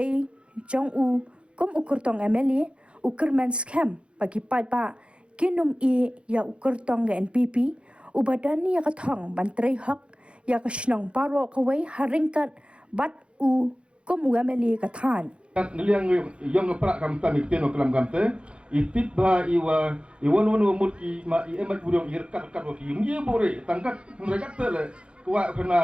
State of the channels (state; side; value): late; left; 0.058 ms